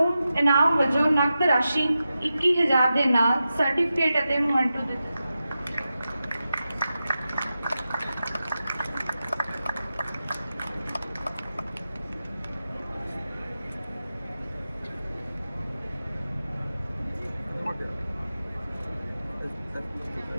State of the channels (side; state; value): both; inverted; correlation -0.92